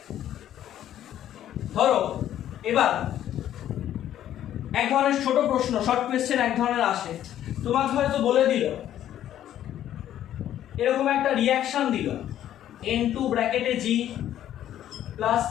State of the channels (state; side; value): quieter; right; 11.5 dB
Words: ধরো এবার এক ধরনের ছোট প্রশ্ন, শর্ট কোয়েশ্চেন এক ধরনের আসে, তোমাকে হয়তো বলে দিল এরকম একটা রিঅ্যাকশন দিল N2 ব্র্যাকেটে G প্লাস